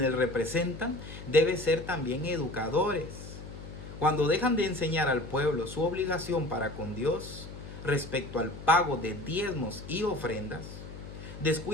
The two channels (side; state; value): left; noise; hum, 12 dB below the sound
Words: representan, deben ser también educadores. Cuando dejan de enseñar al pueblo su obligación para con Dios respecto al pago de diezmos y ofrendas,